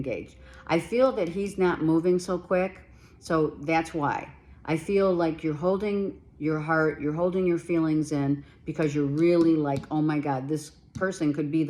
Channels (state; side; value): identical; both; correlation 1.00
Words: I feel that he's not moving so quick. So that's why. I feel like you're holding your heart, you're holding your feelings in because you're really like, oh my God, this person could be